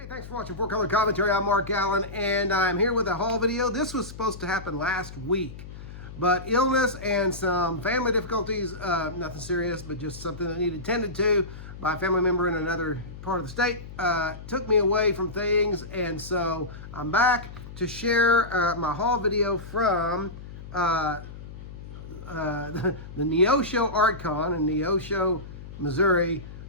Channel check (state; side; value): noise; left; hum, 13 dB below the sound